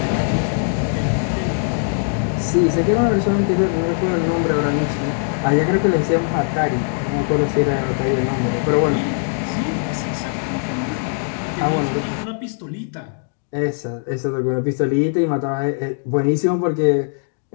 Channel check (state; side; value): silent; right; 58 dB below the other